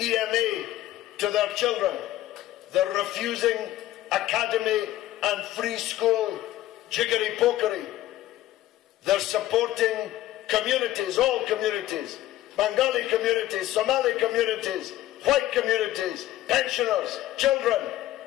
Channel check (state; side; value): quieter; right; 14.6 dB